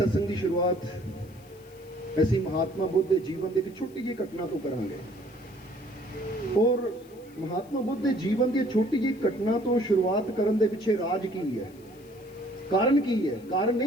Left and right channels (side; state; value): left; noise; hiss, 27 dB below the sound